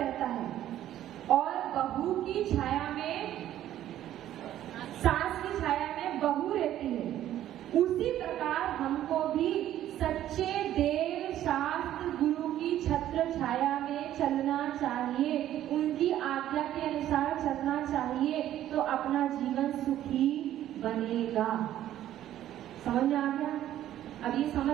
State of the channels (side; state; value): left; quieter; 12.3 dB